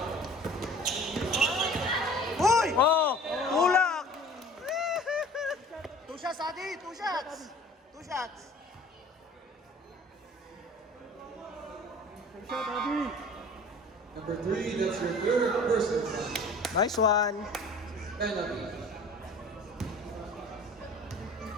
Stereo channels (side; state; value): both; normal; correlation 0.46